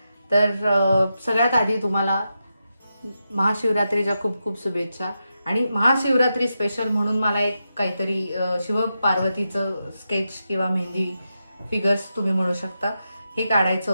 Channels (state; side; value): inverted; both; correlation -0.87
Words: तर सगळ्यात आधी तुम्हाला महाशिवरात्रीच्या खूप खूप शुभेच्छा. आणि महाशिवरात्री स्पेशल म्हणून मला एक काहीतरी शिव पार्वतीचं स्केच किंवा मेहंदी फिगर्स तुम्ही म्हणू शकता हे काढायचं